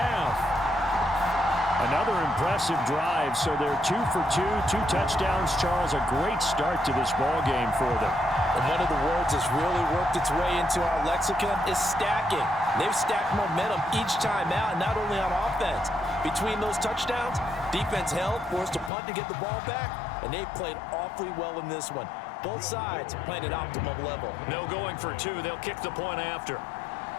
Another impressive drive, so they're 2 for 2, 2 touchdowns. Charles, a great start to this ball game for them. And one of the words that's really worked its way into our lexicon is stacking. They've stacked momentum each time out, not only on offense. Between those touchdowns, defense held, forced to punt to get the ball back, and they played awfully well in this one. Both sides playing at optimum level. No going for 2. They'll kick the point after.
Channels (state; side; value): drops out; right; at 18.9 s